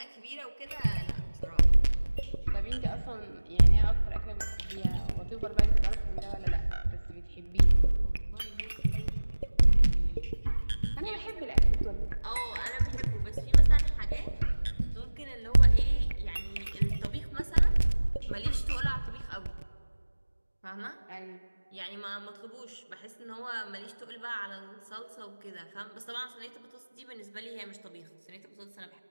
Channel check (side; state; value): both; inverted; correlation -1.00